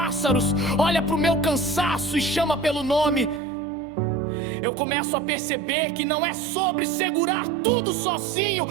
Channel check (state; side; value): drops out; left; at 3.4 s